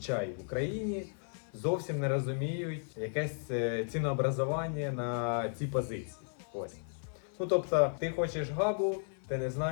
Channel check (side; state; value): right; silent; digital silence